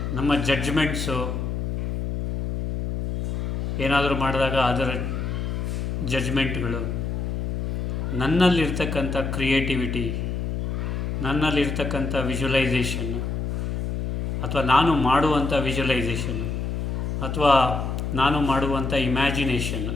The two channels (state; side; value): noise; left; hum, 2 dB below the sound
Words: ನಮ್ಮ ಜಡ್ಜ್ಮೆಂಟ್ಸು, ಏನಾದರೂ ಮಾಡಿದಾಗ ಅದರ ಜಡ್ಜ್ಮೆಂಟ್ಗಳು, ನನ್ನಲ್ಲಿರ್ತಕ್ಕಂಥ ಕ್ರಿಯೇಟಿವಿಟಿ, ನನ್ನಲ್ಲಿರ್ತಕ್ಕಂಥ ವಿಜುವಲೈಸೇಷನ್ ಅಥವಾ ನಾನು ಮಾಡುವಂಥ ವಿಜುವಲೈಸೇಷನ್ ಅಥವಾ ನಾನು ಮಾಡುವಂಥ ಇಮ್ಯಾಜಿನೇಷನ್.